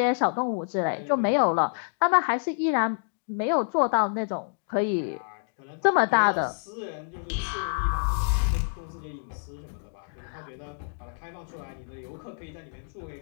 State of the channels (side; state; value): right; silent; digital silence